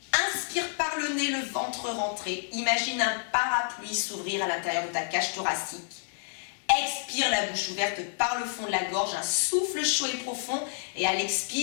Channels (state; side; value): silent; right; 56 dB below the other